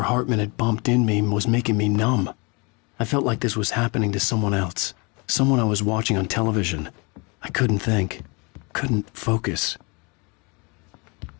Hartman had bumped in me was making me numb. I felt like this was happening to someone else. Someone I was watching on television. I couldn't think. Couldn't focus.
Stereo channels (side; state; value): right; quieter; 30.2 dB